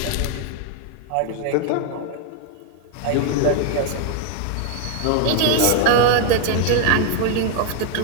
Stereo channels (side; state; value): both; different; correlation 0.00